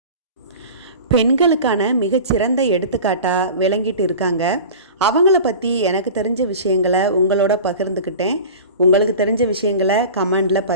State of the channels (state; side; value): inverted; both; correlation -0.36